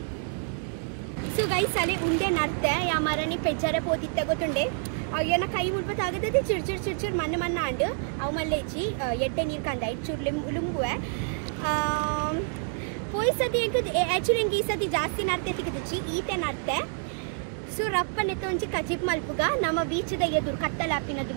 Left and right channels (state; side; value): silent; left; 59 dB below the other